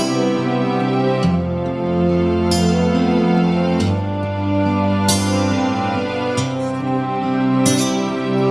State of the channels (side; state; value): left; noise; hum, 29 dB below the sound